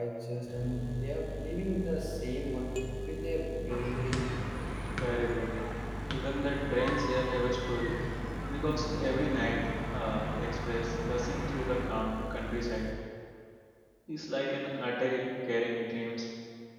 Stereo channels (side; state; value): both; identical; correlation 1.00